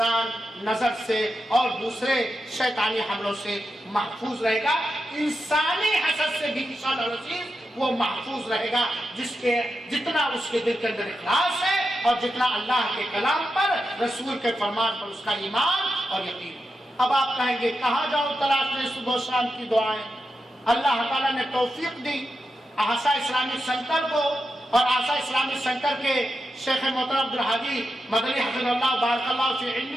نظر سے اور دوسرے شیطانی حملوں سے محفوظ رہے گا, انسانی حسد سے بھی انشاءاللہ العزیز وہ محفوظ رہے گا جتنا اس کے دل کے اندر اخلاص ہے اور جتنا اللہ کے کلام پر رسول کے فرمان پر اس کا ایمان اور یقین. اب آپ کہیں گے کہاں جاؤ تلاشنے صبح و شام کی دعائیں. اللہ تعالیٰ نے توفیق دی آسا اسلامک سینٹر کو, اور آسا اسلامک سینٹر کے شیخ محترم عبدالحادی مدنی حفظہ اللہ بارک اللہ فی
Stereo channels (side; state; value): both; normal; correlation 0.89